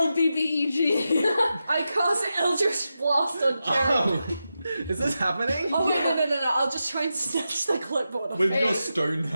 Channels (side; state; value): both; inverted; correlation -0.89